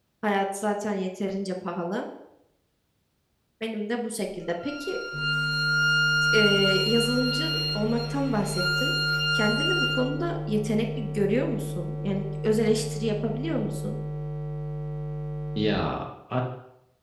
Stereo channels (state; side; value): identical; both; correlation 1.00